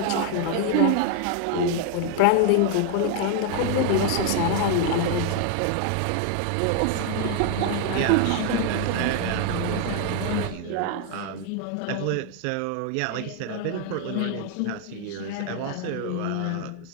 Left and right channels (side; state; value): both; different; correlation 0.00